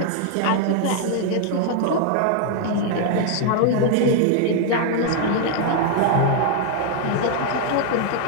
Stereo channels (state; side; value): different; both; correlation 0.00